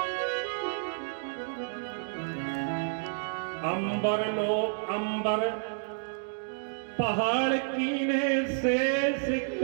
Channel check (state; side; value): silent; left; digital silence